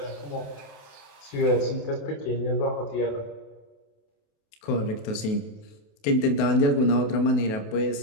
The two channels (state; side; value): late; right; 28 ms